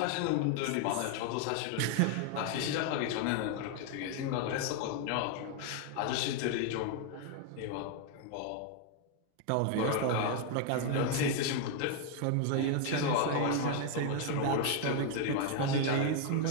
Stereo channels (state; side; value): different; both; correlation 0.01